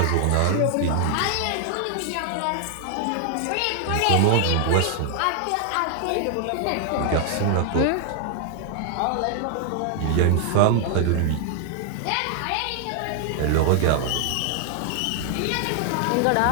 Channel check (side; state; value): both; different; correlation 0.00